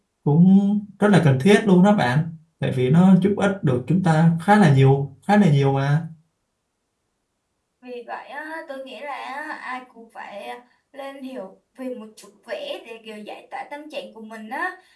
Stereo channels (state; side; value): identical; both; correlation 1.00